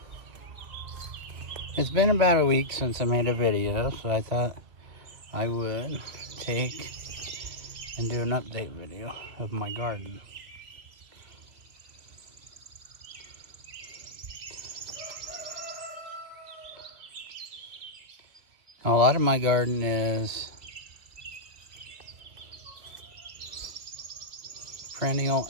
It's been about a week since I made a video, so I thought I would take and do an update video of my garden. A lot of my garden is perennial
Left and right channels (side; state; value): left; late; 2.4 ms